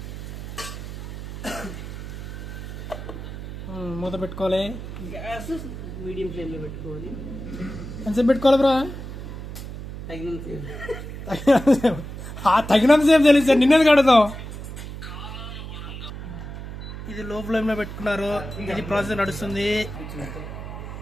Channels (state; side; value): noise; right; hum, 9 dB below the sound